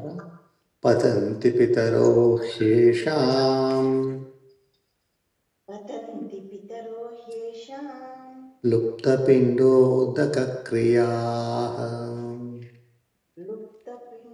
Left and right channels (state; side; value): identical; both; correlation 1.00